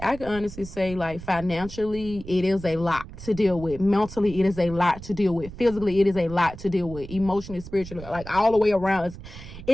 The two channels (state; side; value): noise; right; rumble, 14 dB below the sound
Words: say, like, financially, it is a lot to deal with. Mentally, it is a lot to deal with. Physically, it is a lot to deal with. Emotionally, spiritually, like all the way around.